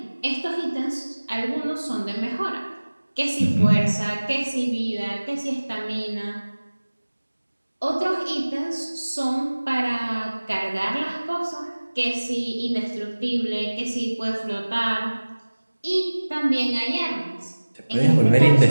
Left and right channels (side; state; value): both; inverted; correlation -1.00